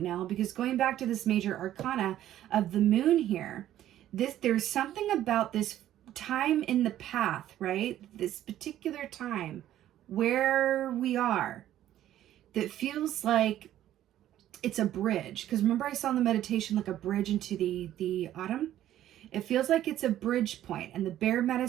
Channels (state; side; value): quieter; left; 12.5 dB